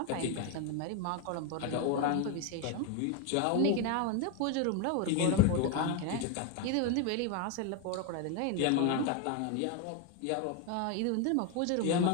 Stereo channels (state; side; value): different; both; correlation 0.01